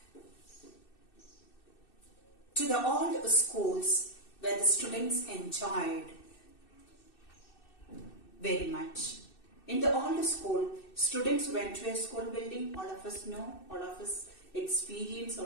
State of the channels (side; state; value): right; late; 2.6 ms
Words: to the old schools where the students enjoyed very much. In the old school, students went to a school building. All of us know, all of us experience, all